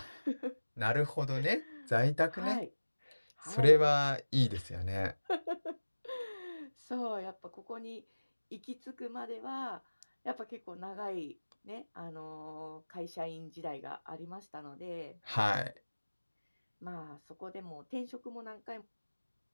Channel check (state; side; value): inverted; both; correlation -1.00